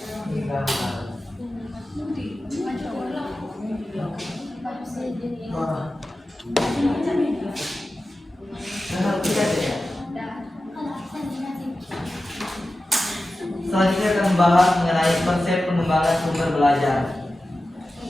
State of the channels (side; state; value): both; normal; correlation 0.94